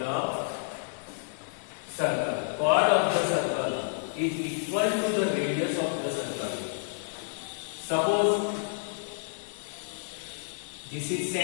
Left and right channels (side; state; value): right; silent; 58 dB below the other